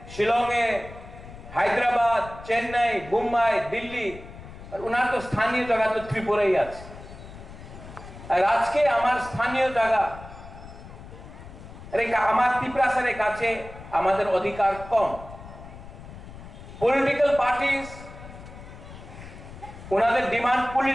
শিলংয়ে হায়দ্রাবাদ চেন্নাই মুম্বাই দিল্লি আর ওনার তো স্থানীয় জায়গা তো ত্রিপুরাই আছে আর আজকে আমার স্থানীয় জায়গা আমার তিপ্রাসারের কাছে আমাদের অধিকার কম পলিটিক্যাল পার্টিস ওনাদের ডিমান্ড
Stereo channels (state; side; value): noise; left; rumble, 15 dB below the sound